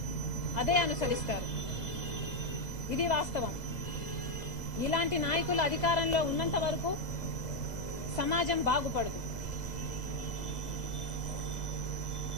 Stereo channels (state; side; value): late; right; 2.0 ms